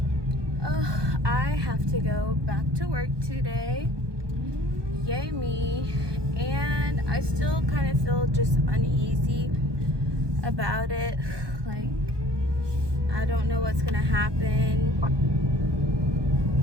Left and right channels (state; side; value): late; left; 1.2 ms